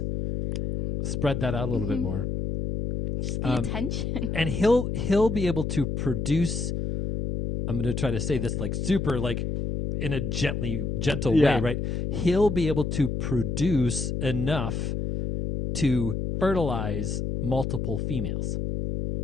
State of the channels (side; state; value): left; noise; hum, 2 dB below the sound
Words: Spread that out a little bit more. Just the attention. And he'll be able to produce. I'm going to try to say this like super like in a gentle way, right? He'll be able to produce enough to fertilize multiple females.